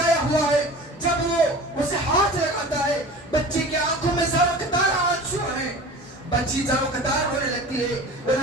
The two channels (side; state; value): both; normal; correlation 0.38